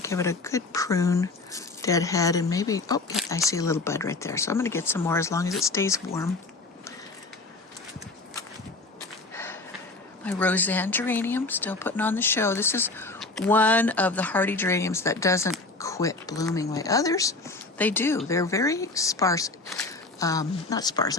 give it a good prune, deadhead, and maybe, oh, yeah, I see a little bud right there. So I'm going to get some more as long as it stays warm. My Roseanne geranium, still putting on the show. This is one of the hardy geraniums that doesn't quit blooming like others. They do. They're very sparse. Not sparse,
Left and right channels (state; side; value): quieter; right; 3.3 dB